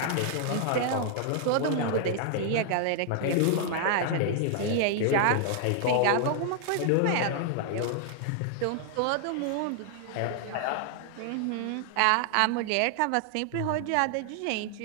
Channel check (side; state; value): both; different; correlation 0.00